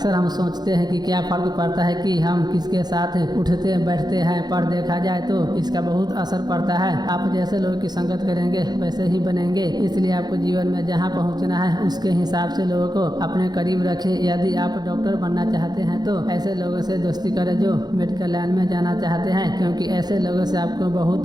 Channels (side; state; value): left; late; 0.20 ms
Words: हम सोचते हैं कि क्या फर्क पड़ता है कि हम किसके साथ उठते बैठते हैं, पर देखा जाए तो इसका बहुत असर पड़ता है। आप जैसे लोगों की संगत करेंगे वैसे ही बनेंगे। इसलिए आपको जीवन में जहां पहुंचना है उसके हिसाब से लोगों को अपने करीब रखें। यदि आप डॉक्टर बनना चाहते हैं तो ऐसे लोगों से दोस्ती करें जो मेडिकल लाइन में जाना चाहते हैं, क्योंकि ऐसे लोगों से आपको